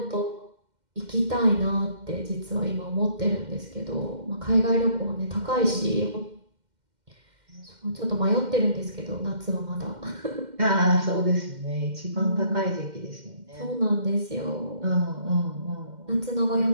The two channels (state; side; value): late; left; 2.1 ms